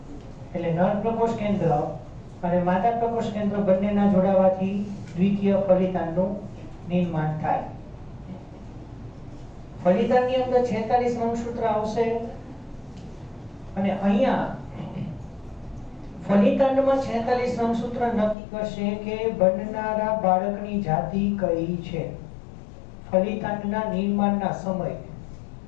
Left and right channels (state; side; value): drops out; right; at 18.4 s